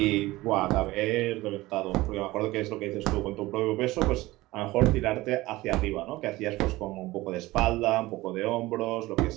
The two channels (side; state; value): left; quieter; 19.0 dB